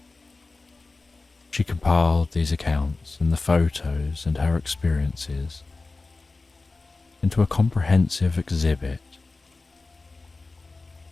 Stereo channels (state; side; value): quieter; right; 3.6 dB